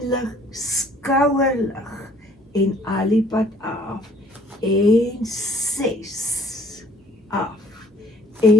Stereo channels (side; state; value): both; normal; correlation 0.58